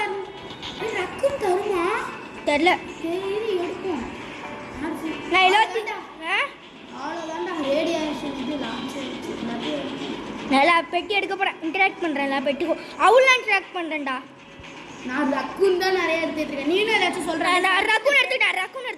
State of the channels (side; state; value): both; identical; correlation 1.00